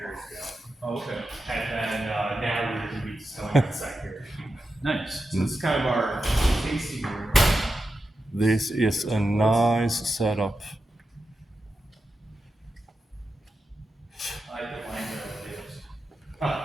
ago. Oh, okay. And then now we're going to be distilling on site here. Nice. So this is kind of our tasting room. This is a nice setup. I like the wine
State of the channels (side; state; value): both; normal; correlation 0.90